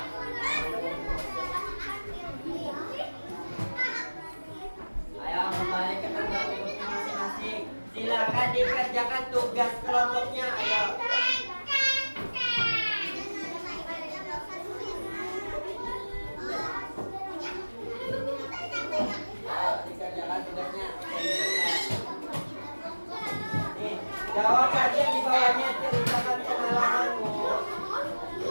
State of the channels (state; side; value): inverted; both; correlation -1.00